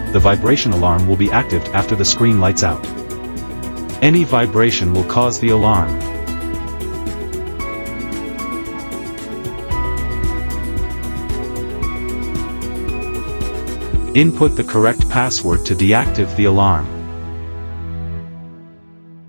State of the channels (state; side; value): inverted; both; correlation -1.00